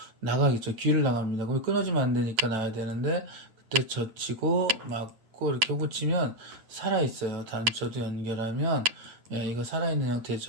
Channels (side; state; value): left; late; 8.8 ms